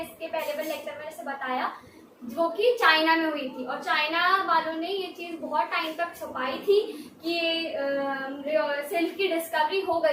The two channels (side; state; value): both; identical; correlation 1.00